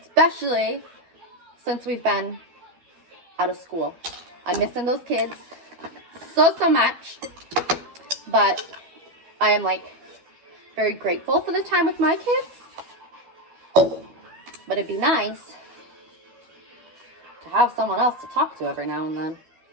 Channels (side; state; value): left; late; 12 ms